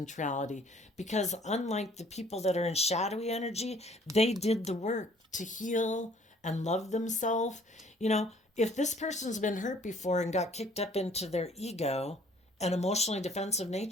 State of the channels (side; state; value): both; normal; correlation 0.57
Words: reality. Because unlike the people that are in shadowy energy, they did the work to heal and love themselves. You know, if this person's been hurt before and got kicked up into their ego and emotionally defensive